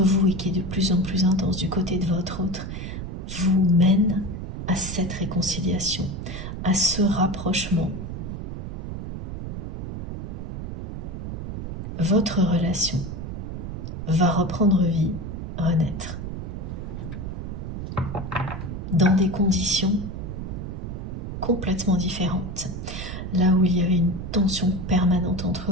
vous et qui est de plus en plus intense du côté de votre autre, vous mène à cette réconciliation, à ce rapprochement. Votre relation va reprendre vie, renaître, dans des conditions complètement différentes. Là où il y avait une tension permanente entre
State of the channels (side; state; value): right; noise; rumble, 6 dB below the sound